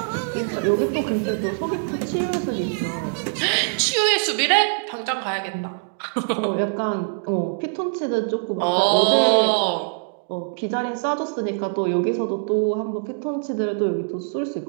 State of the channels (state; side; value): silent; left; digital silence